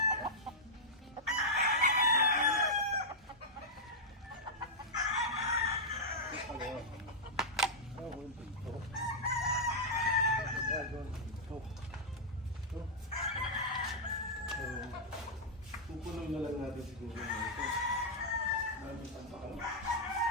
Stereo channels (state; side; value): normal; both; correlation -0.08